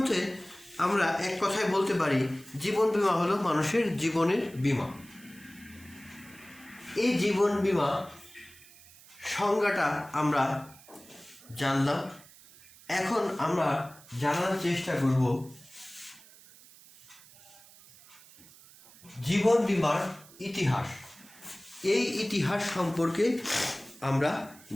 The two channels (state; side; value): noise; right; hiss, 23 dB below the sound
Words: আমরা এক কথায় বলতে পারি জীবন বীমা হলো মানুষের জীবনের বীমা। এই জীবন বীমা সংজ্ঞাটা আমরা জানলাম। এখন আমরা জানার চেষ্টা করব জীবন বীমার ইতিহাস। এই ইতিহাস সম্পর্কে আমরা